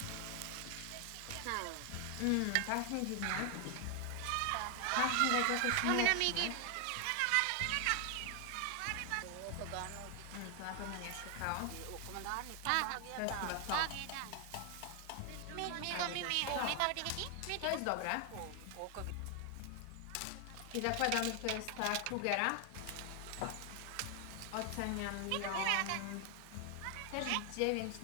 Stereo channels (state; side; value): different; both; correlation 0.00